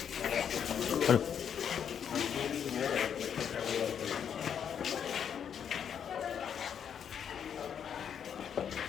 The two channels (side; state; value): right; quieter; 8.2 dB